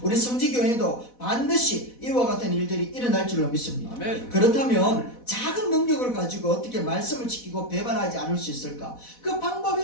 우리 성지교회도 반드시 이와 같은 일들이 일어날 줄로 믿습니다. 그렇다면 작은 능력을 가지고 어떻게 말씀을 지키고 배반하지 않을 수 있을까? 그 방법이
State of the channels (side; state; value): right; late; 4.1 ms